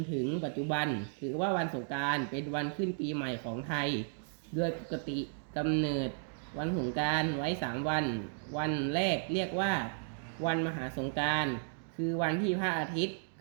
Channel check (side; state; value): left; silent; digital silence